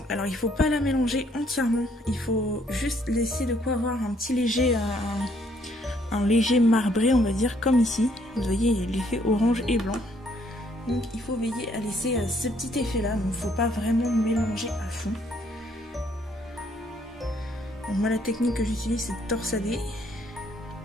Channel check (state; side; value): normal; both; correlation 0.67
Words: Alors il ne faut pas la mélanger entièrement, il faut juste laisser de quoi avoir un petit léger, un léger marbré on va dire, comme ici. Vous voyez, il y a l'effet orange et blanc. Donc il faut veiller à laisser ce petit effet là, donc il ne faut pas vraiment mélanger à fond. Donc moi la technique que j'utilise c'est de torsader.